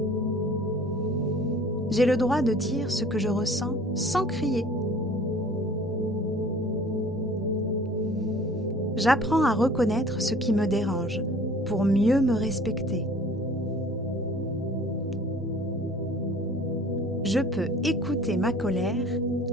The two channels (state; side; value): normal; both; correlation 0.49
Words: J'ai le droit de dire ce que je ressens sans crier. J'apprends à reconnaître ce qui me dérange pour mieux me respecter. Je peux écouter ma colère